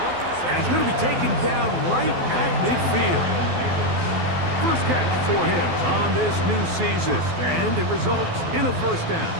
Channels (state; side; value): late; left; 12 ms